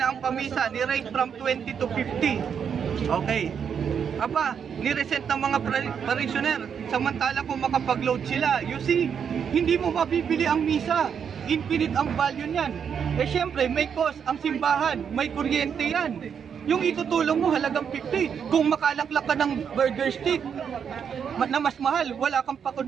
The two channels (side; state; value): left; quieter; 7.4 dB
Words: ang pamisa ni rate from 20 to 50. Okay. Aba, ni-reset ng mga parishioner, samantala kung makapag-load sila. You see, hindi mo mabibili ang misa. Infinite ang value niyan. Eh syempre, may cost ang simbahan, may kuryente yan. Yung itutulong mo halagang 50. Kung makalaklak ka ng burger stick na mas mahal, wala kang